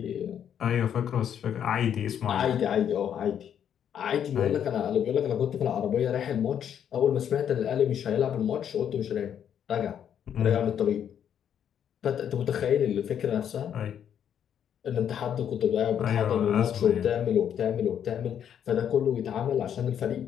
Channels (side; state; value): right; quieter; 9.1 dB